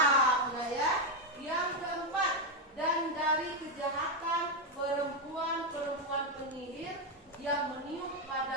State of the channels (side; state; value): both; normal; correlation 0.05